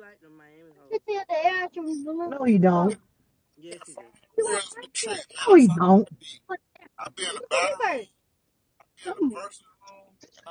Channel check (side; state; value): both; identical; correlation 1.00